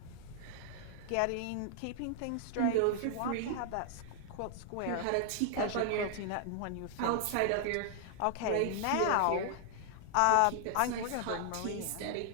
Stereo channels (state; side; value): different; both; correlation -0.01